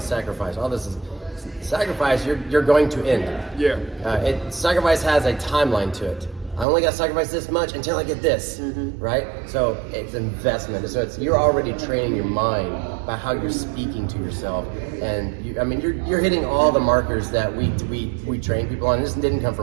sacrifice, all this is sacrifice, you're going to end. Sacrifice has a timeline to it. I only got to sacrifice this much until I get this, right? So it's investment. So you're already training your mind by how you're speaking to yourself, and you're hitting all the markers that we train people on. This didn't come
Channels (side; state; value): left; drops out; at 6.7 s